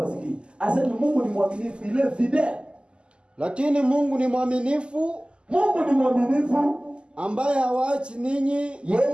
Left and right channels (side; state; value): left; late; 0.051 ms